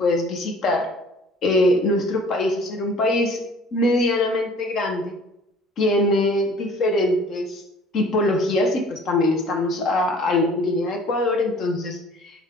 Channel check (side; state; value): both; normal; correlation 0.50